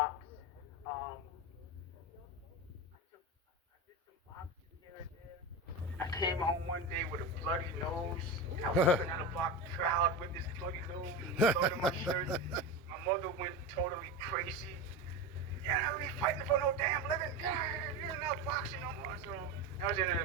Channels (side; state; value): both; normal; correlation 0.22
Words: I did some boxing here and there. I came home one day with a bloody nose. I was looking at a block crowd with this bloody nose, blood on my shirt. My mother went totally crazy. You're not really fighting for no damn living. You're not boxing no more. So I was in